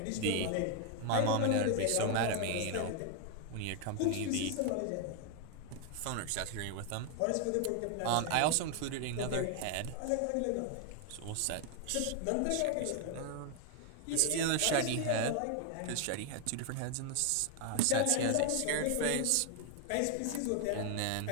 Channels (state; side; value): different; both; correlation 0.00